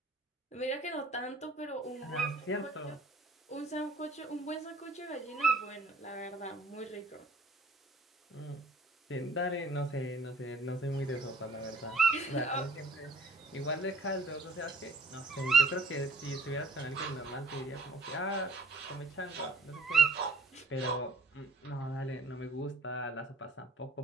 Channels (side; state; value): left; quieter; 3.0 dB